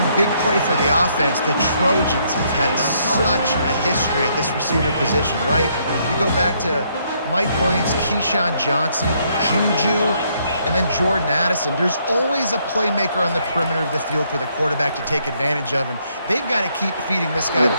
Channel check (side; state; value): both; inverted; correlation -0.71